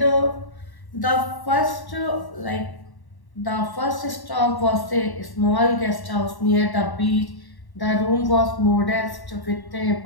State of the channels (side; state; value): right; late; 1.1 ms